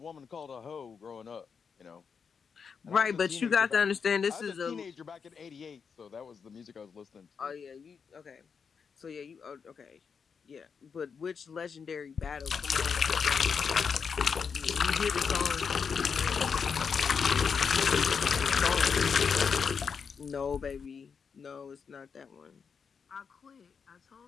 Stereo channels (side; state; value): right; quieter; 6.1 dB